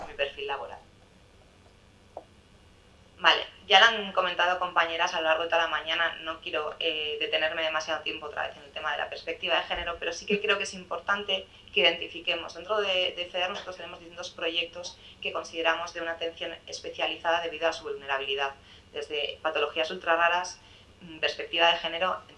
laboral. Vale, ya lo han comentado compañeras a lo largo de toda la mañana, no quiero detenerme demasiado tiempo otra vez en el tema de la perspectiva de género, pero sí que creo que es importante que identifiquemos. Dentro de FEDER nosotros tenemos distintos proyectos que consideramos de una atención especializada debido a su vulnerabilidad, desde patologías ultra raras, perspectiva de género,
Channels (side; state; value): both; identical; correlation 1.00